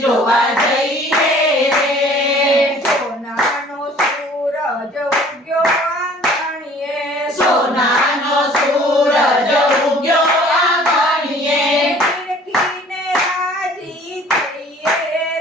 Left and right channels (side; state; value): both; normal; correlation 0.52